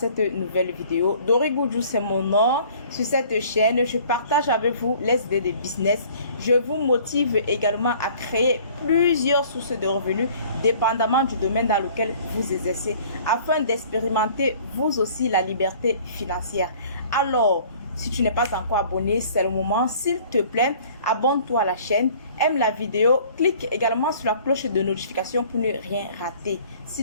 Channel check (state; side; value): inverted; both; correlation -0.52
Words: nouvelle vidéo. Dori Goudjou, c'est mon nom. Sur cette chaîne, je partage avec vous les idées de business. Je vous motive également à créer plusieurs sources de revenus dépendamment du domaine dans lequel vous exercez afin d'expérimenter vous aussi la liberté financière. Alors, si tu n'es pas encore abonné, c'est le moment. S'il te plaît, abonne-toi à la chaîne, aime la vidéo, clique également sur la cloche de notification pour ne rien rater.